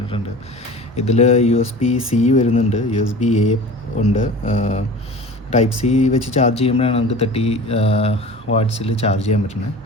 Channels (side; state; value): both; normal; correlation 0.38